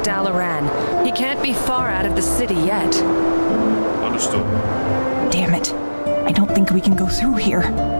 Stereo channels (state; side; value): inverted; both; correlation -1.00